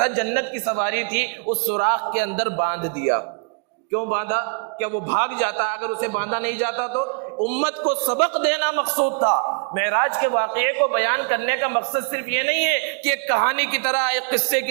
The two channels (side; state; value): left; quieter; 39.8 dB